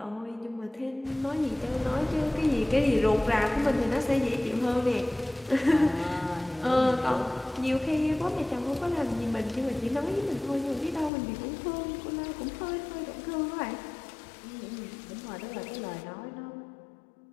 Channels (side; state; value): right; drops out; at 11.1 s